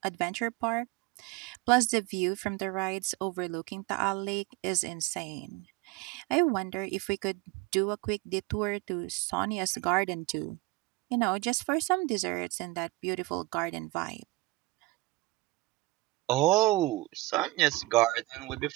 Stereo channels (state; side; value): quieter; left; 20.9 dB